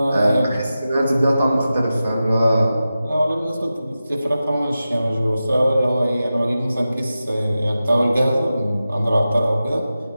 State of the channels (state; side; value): inverted; both; correlation -0.93